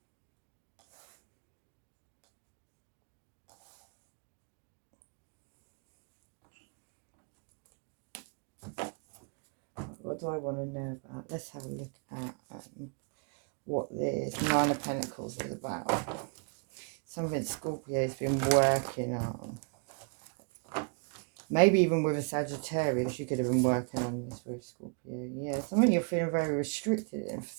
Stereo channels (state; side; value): quieter; left; 36.7 dB